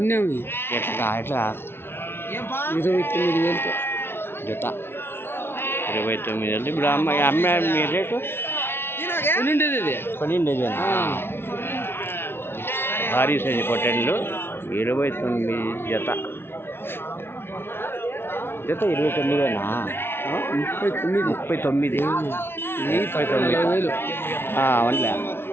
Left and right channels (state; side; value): late; right; 0.11 ms